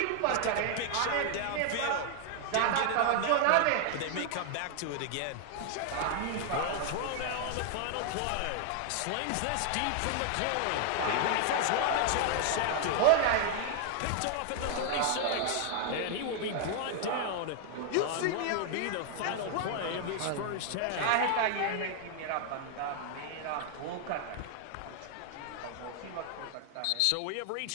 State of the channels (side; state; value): both; different; correlation 0.00